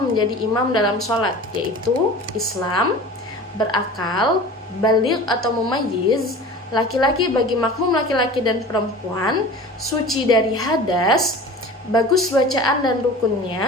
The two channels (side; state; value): both; normal; correlation 0.38